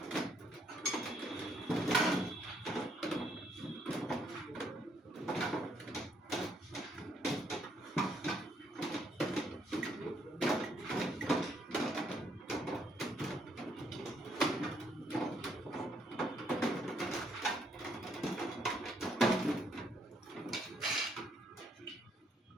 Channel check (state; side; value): normal; both; correlation 0.71